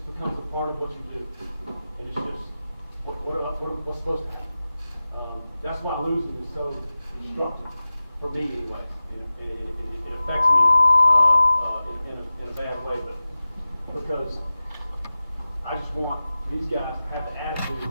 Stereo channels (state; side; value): inverted; both; correlation -0.96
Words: becomes a part of what you do. And it's just, what's supposed to happen? That's why losing is so destructive, for me anyway. And it affects me in a bad way, but because I just want these guys to have the attitude